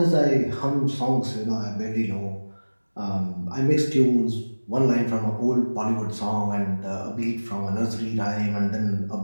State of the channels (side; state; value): both; inverted; correlation -1.00